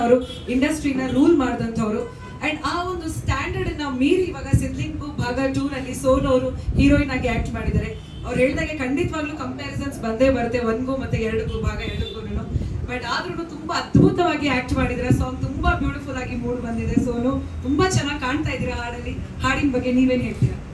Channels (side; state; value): both; identical; correlation 1.00